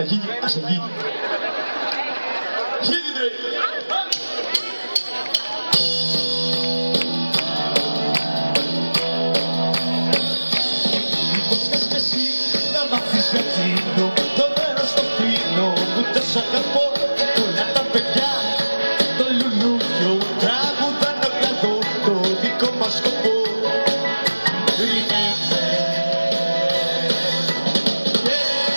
γίνει, ας γίνει. Γίνει ρε! Μήπως θες και εσύ να μάθεις για εκείνο, το μέρος στο φίνο που τόσο αγαπώ. Όλα τα παιδιά, το λουλούδιο, τραγουδάν το κλαδό, το δικό μας σκοπό.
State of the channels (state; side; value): inverted; both; correlation -1.00